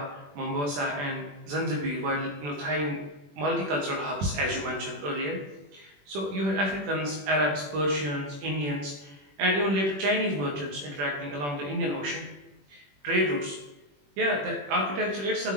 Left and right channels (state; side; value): late; left; 21 ms